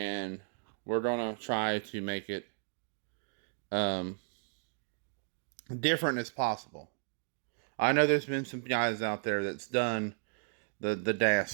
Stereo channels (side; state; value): left; silent; digital silence